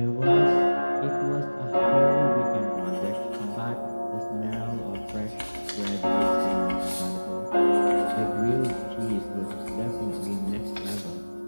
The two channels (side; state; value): both; inverted; correlation -1.00